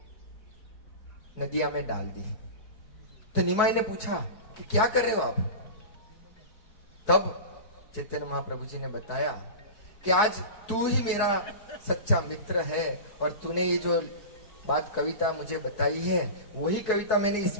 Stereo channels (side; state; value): right; late; 4.7 ms